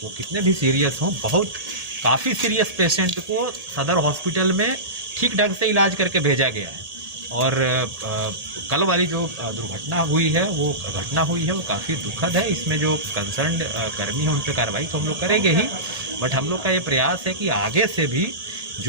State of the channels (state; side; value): late; left; 1.8 ms